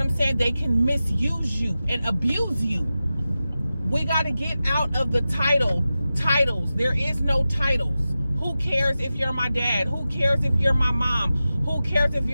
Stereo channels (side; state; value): both; inverted; correlation -0.94